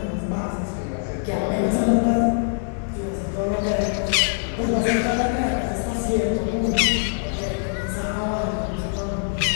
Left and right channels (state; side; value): silent; right; 63 dB below the other